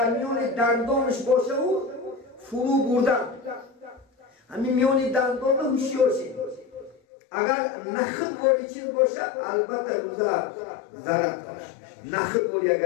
میان دندانش باشه و فرو بردن همین میان دندان هوشیار شید اگر نخد باری چیز باشه البته روزه ضرر داره نخد باری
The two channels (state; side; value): drops out; right; at 7.0 s